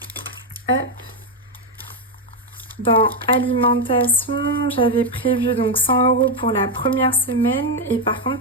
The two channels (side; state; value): both; normal; correlation 0.05